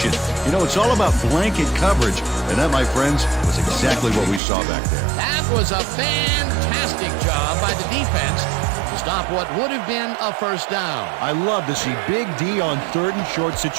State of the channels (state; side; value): drops out; left; at 4.4 s